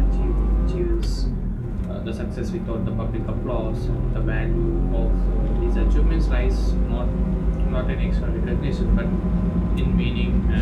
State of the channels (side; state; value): both; identical; correlation 1.00